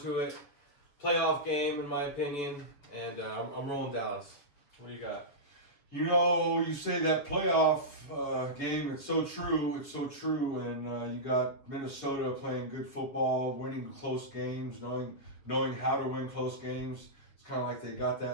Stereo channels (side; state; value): right; late; 7.2 ms